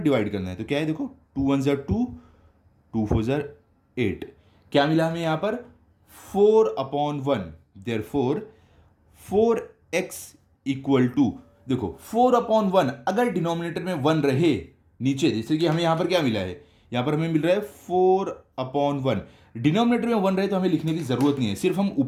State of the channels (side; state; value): both; identical; correlation 1.00